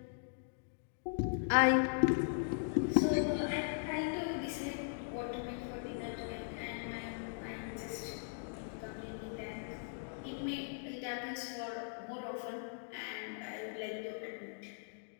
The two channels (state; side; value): silent; right; digital silence